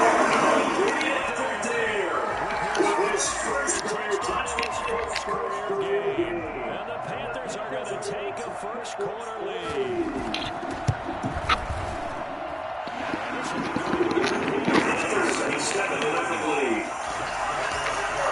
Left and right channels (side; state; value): both; identical; correlation 1.00